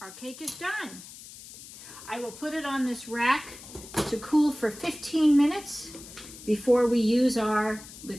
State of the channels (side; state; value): left; noise; hiss, 16 dB below the sound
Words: cake is done. I will put it on this rack to cool for 15 minutes before we use our